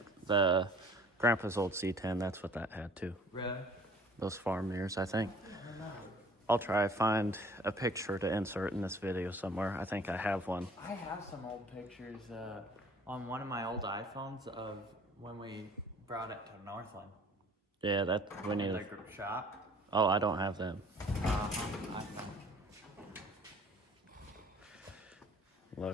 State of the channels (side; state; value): both; normal; correlation 0.52